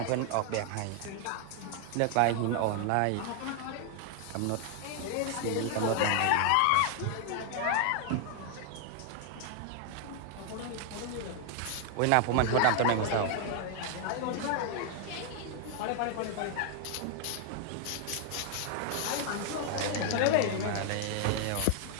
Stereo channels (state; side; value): different; both; correlation 0.00